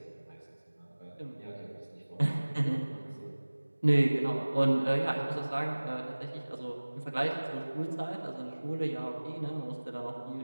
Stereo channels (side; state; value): both; inverted; correlation -1.00